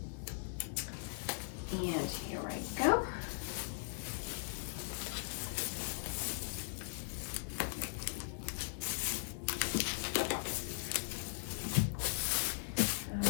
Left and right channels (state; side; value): silent; right; digital silence